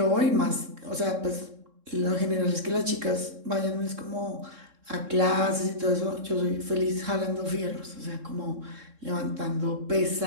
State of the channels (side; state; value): left; late; 3.7 ms